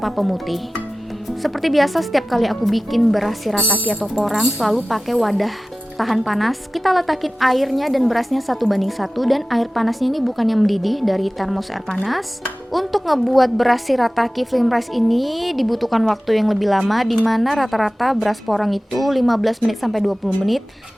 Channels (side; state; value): both; normal; correlation 0.96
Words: pemutih. Seperti biasa setiap kali aku bikin beras shirataki atau porang selalu pakai wadah tahan panas. Kita letakin airnya dan berasnya 1:1 dan air panasnya ini bukan yang mendidih dari termos air panas. Untuk ngebuat beras shirataki Flimrice ini dibutuhkan waktu yang lebih lama, dimana rata-rata beras porang itu 15 menit sampai 20 menit,